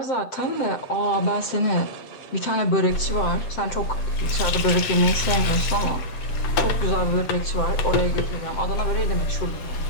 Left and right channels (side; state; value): right; late; 7.7 ms